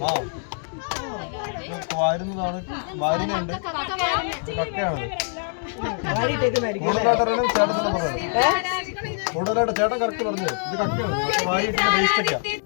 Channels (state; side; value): silent; right; 62 dB below the other